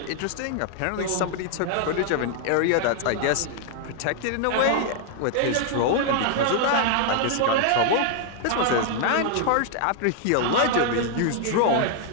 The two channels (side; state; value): both; different; correlation 0.00